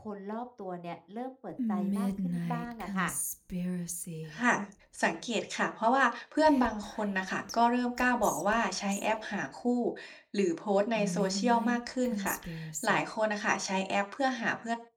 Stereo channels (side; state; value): both; identical; correlation 1.00